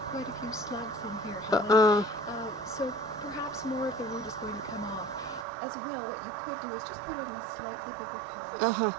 quite a few slugs in here, Helen. So perhaps more of the root is going to come off. As well, what you could do is just put it in a slightly bigger pot,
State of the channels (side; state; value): left; drops out; at 5.5 s